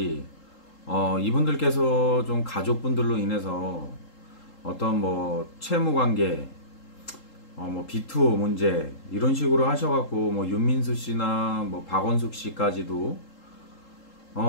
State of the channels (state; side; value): late; right; 3.8 ms